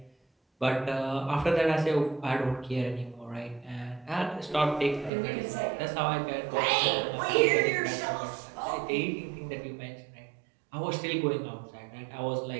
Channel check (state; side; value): drops out; left; at 5.1 s